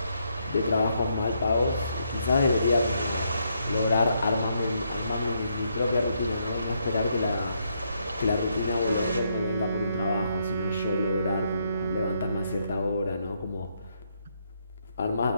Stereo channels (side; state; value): both; inverted; correlation -0.76